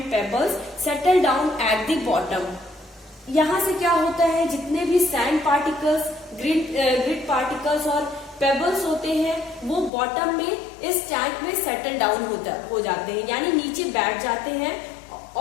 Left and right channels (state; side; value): drops out; right; at 9.9 s